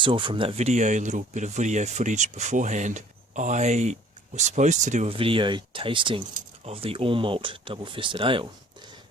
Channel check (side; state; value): both; normal; correlation 0.53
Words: from that video, a little bit of video footage beforehand, I was supposed to do a video tasting of the all malt double fisted ale,